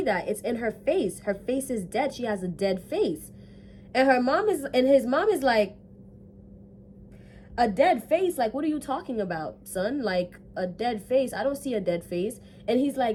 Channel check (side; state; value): both; identical; correlation 1.00